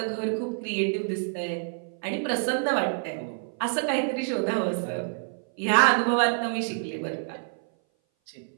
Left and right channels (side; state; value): left; silent; 58 dB below the other